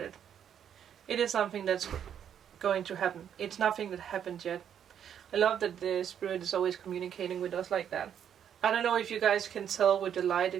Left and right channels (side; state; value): left; quieter; 9.0 dB